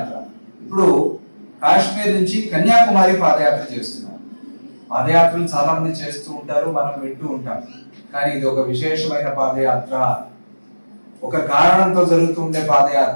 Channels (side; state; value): both; inverted; correlation -1.00